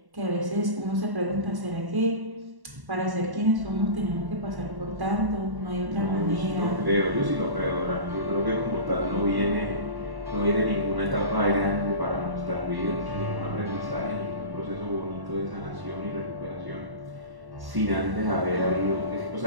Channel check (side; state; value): left; late; 1.1 ms